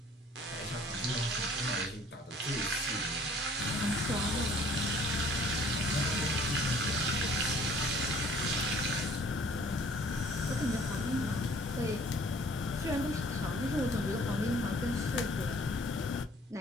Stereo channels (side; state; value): both; normal; correlation 0.55